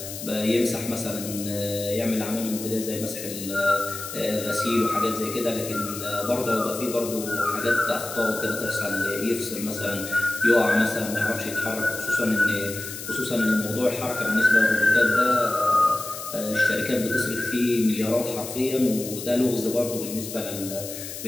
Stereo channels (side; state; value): left; noise; hiss, 9 dB below the sound